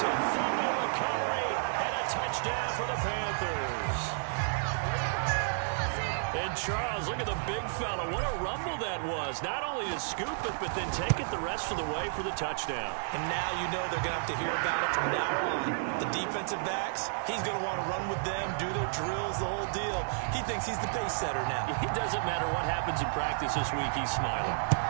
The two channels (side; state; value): left; silent; digital silence